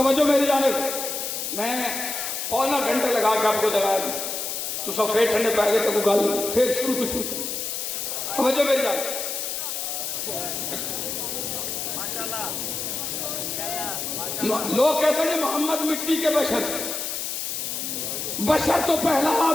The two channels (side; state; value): left; noise; hiss, 3 dB below the sound